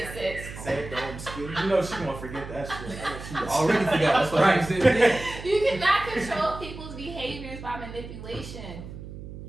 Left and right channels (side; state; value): right; noise; hum, 12 dB below the sound